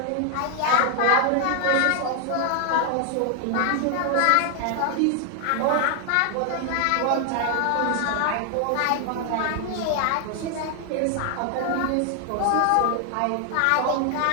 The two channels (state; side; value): different; both; correlation 0.00